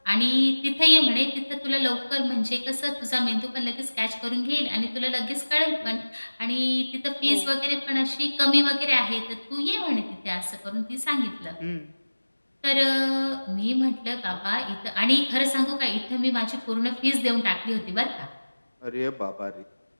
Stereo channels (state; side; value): inverted; both; correlation -1.00